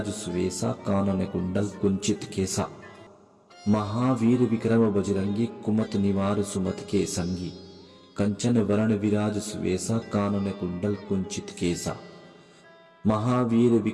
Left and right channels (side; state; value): both; identical; correlation 1.00